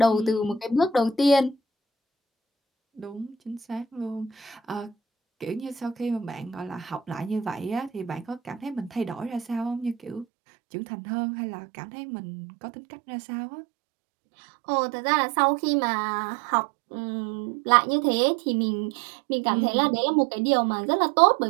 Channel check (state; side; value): drops out; left; at 10.2 s